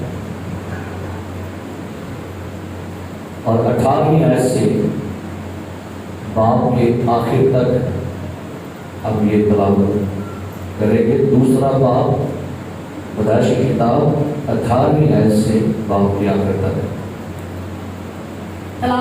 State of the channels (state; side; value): identical; both; correlation 1.00